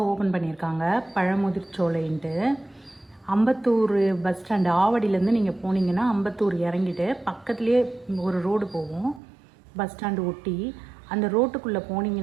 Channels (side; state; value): left; drops out; at 9.2 s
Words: ஓப்பன் பண்ணியிருக்காங்க, பழமுதிர்ச்சோலைன்ட்டு. அம்பத்தூர் பஸ் ஸ்டாண்டு ஆவடியிலேருந்து நீங்கள் போனீங்கன்னா அம்பத்தூர் இறங்கிட்டு பக்கத்துலேயே ஒரு ரோடு போகும், பஸ் ஸ்டாண்டு ஒட்டி. அந்த ரோட்டுக்குள்ளே